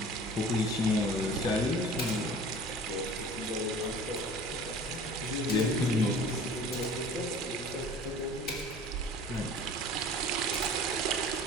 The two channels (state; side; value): normal; both; correlation 0.44